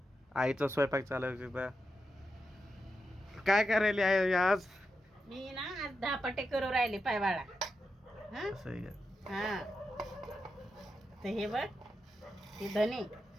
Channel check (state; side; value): normal; both; correlation 0.88